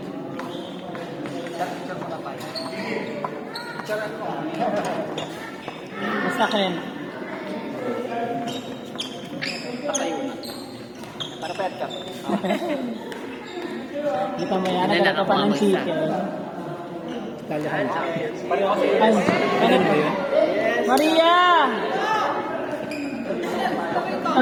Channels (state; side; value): identical; both; correlation 1.00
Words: Basta kayo. Para pet ka. Di pa may anak ka pa ng chicken. Kalahan. Ay, ano ba yun? Maria!